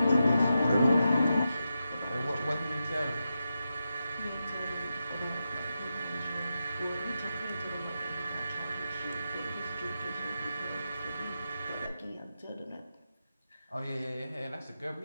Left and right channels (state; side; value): inverted; both; correlation -0.88